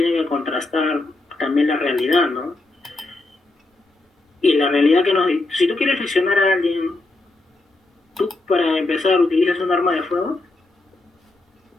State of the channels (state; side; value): quieter; right; 3.0 dB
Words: que contrastar también la realidad, ¿no? Y la realidad que nos... Si tú quieres lesionar a alguien, ¿tú para empezar utilizas un arma de fuego?